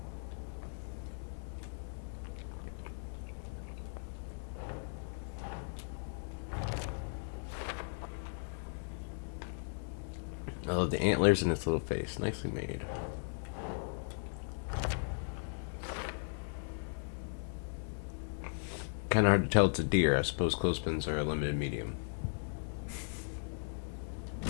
I love the antlers in its little face. Nicely made. Kind of hard to tell it's a deer. I suppose clothespins are a limited medium.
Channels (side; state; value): right; silent; digital silence